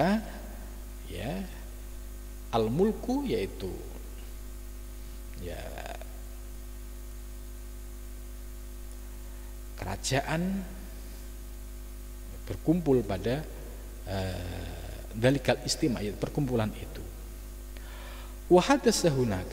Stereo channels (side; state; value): both; identical; correlation 1.00